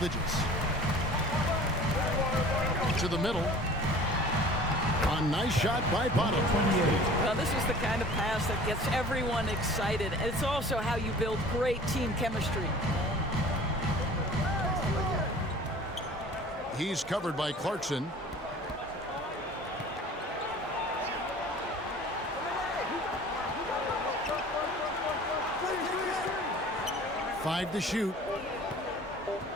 To the middle. A nice shot by Bottom. Well, this is the kind of pass that gets everyone excited. It's also how you build great team chemistry. He's covered by Clarkson. Five to shoot.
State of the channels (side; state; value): both; normal; correlation 0.45